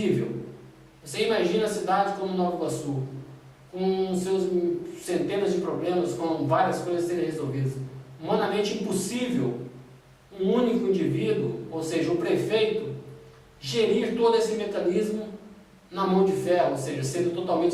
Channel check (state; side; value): identical; both; correlation 1.00